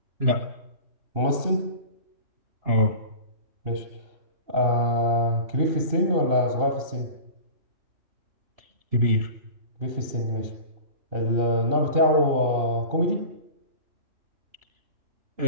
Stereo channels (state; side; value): late; left; 2.7 ms